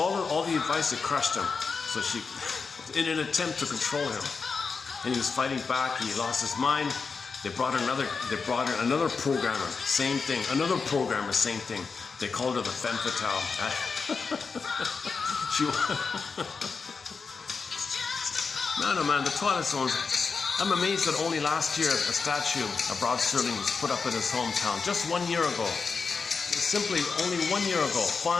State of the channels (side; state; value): right; quieter; 5.0 dB